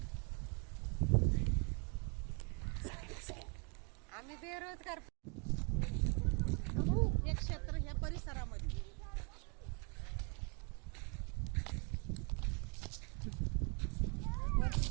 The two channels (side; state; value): left; quieter; 35.4 dB